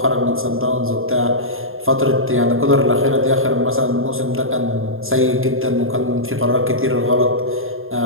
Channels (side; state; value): left; late; 0.60 ms